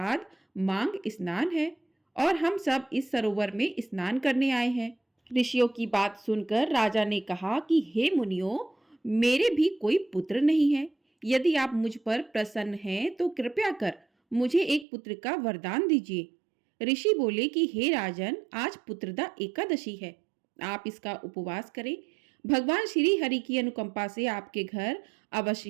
मांग स्नान है और हम सब इस सरोवर में स्नान करने आए हैं। ऋषियों की बात सुनकर राजा ने कहा कि हे मुनियों, मेरे भी कोई पुत्र नहीं है। यदि आप मुझ पर प्रसन्न हैं तो कृपया कर मुझे एक पुत्र का वरदान दीजिए। ऋषि बोले कि हे राजन, आज पुत्रदा एकादशी है, आप इसका उपवास करें। भगवान श्री हरि की अनुकंपा से आपके घर अवश्य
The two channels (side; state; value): left; drops out; at 14.9 s